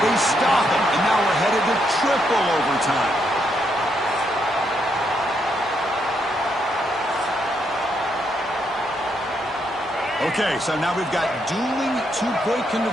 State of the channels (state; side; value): normal; both; correlation 0.77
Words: They stop him, and now we're headed to triple overtime. Okay, so now we've got dueling 2-point